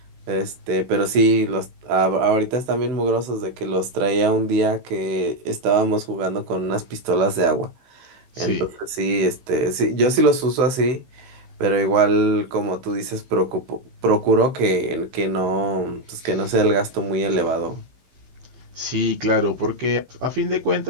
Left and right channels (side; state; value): left; late; 15 ms